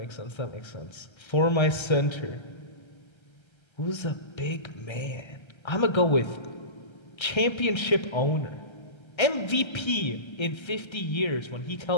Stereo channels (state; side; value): late; right; 1.3 ms